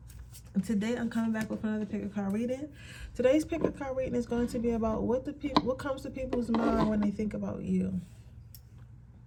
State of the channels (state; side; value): identical; both; correlation 1.00